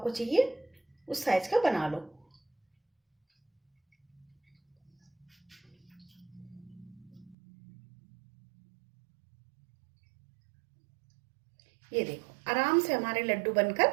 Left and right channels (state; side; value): drops out; left; at 7.4 s